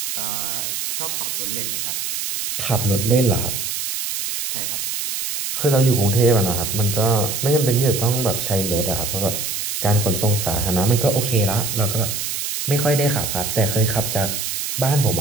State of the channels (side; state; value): right; noise; hiss, 3 dB below the sound